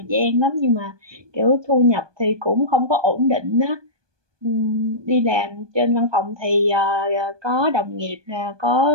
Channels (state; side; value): late; left; 1.2 ms